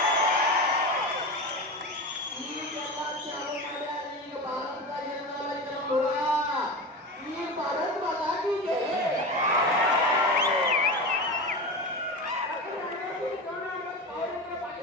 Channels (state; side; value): normal; both; correlation 0.25